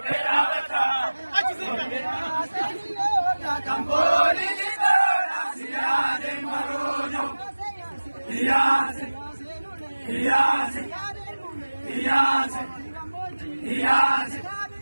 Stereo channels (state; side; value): inverted; both; correlation -1.00